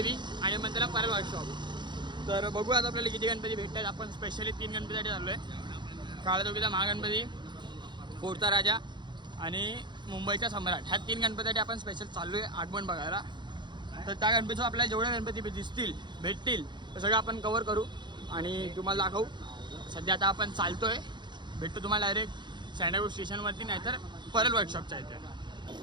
आणि मग त्याला परल वर्कशॉप. तर बघू आता आपल्याला किती गणपती भेटतात. आपण स्पेशली 3 गणपतीसाठी चाललो आहे. काळा चौकीचा महागणपती, फोडचा राजा आणि मुंबईचा सम्राट. ह्या 3 गणपतीसाठी आपण स्पेशल चाललो आहे आगमन बघायला. तर त्या गणपतीचं आपल्याला जेवढे गणपती दिसतील भेटतील ते सगळं आपण कवर करू आणि तुम्हाला दाखवू. सध्या आता आपण चालतो आहे. भेटतो तुम्हाला डायरेक्ट सँडलवूड स्टेशनवरती, नाहीतर परल वर्कशॉपच्या इथे.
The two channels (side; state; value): left; late; 0.22 ms